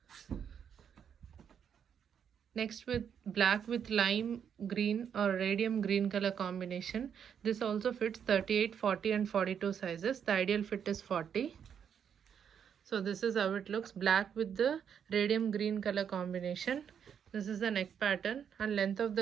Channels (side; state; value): left; quieter; 8.0 dB